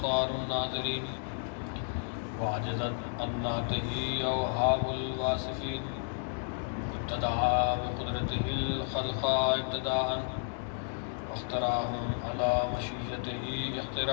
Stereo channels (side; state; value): right; silent; digital silence